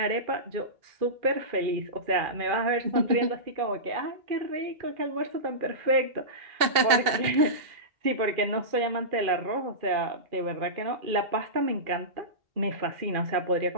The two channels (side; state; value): left; late; 2.6 ms